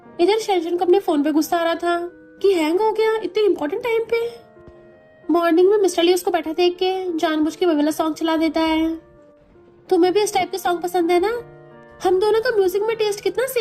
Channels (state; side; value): identical; both; correlation 1.00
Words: इधर शेंशन को अपने फोन पे गुस्सा आ रहा था कि हैंग हो गया इतने इम्पोर्टेंट टाइम पे। मॉर्निंग में मिस्टर ली उसको बैठा देख के जानबूझ के वो वाला सॉन्ग चला देता है। तुम्हें भी इस टाइप के सॉन्ग पसंद है ना, हम दोनों का म्यूजिक में टेस्ट कितना